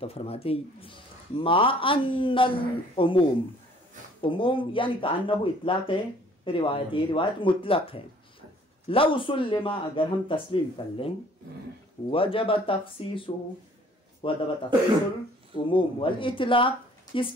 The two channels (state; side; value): normal; both; correlation 0.56